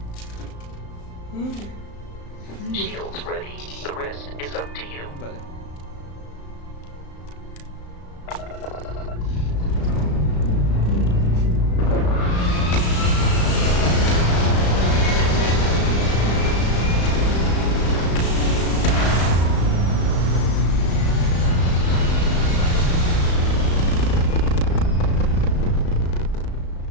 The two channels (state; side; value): late; right; 35 ms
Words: Shields ready. The rest is up to you. Vale.